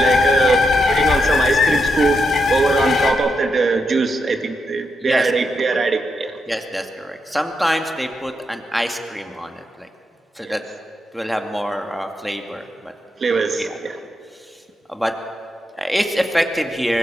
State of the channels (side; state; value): both; normal; correlation 0.83